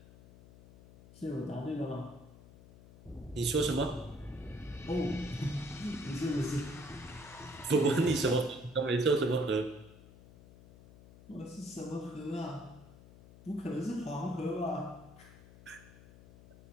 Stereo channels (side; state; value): left; noise; hum, 20 dB below the sound